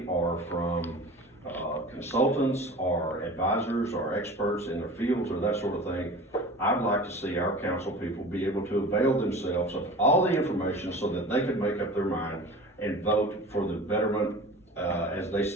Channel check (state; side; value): normal; both; correlation 0.38